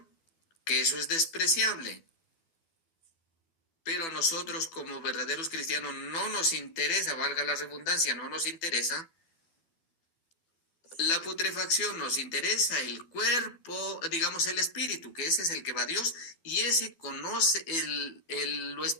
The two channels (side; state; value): right; late; 12 ms